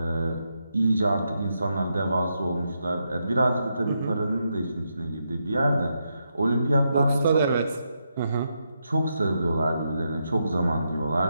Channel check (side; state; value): both; inverted; correlation -0.83